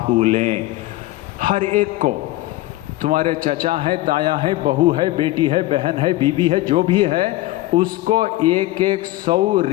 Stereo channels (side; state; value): right; quieter; 17.5 dB